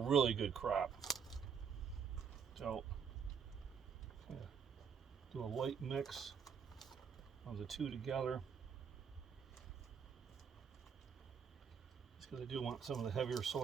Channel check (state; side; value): quieter; left; 6.8 dB